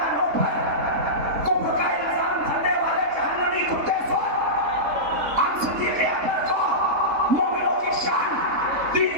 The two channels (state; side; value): late; left; 3.6 ms